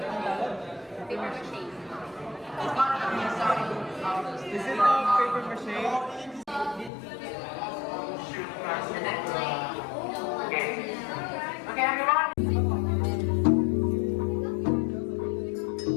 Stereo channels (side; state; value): right; drops out; at 6.9 s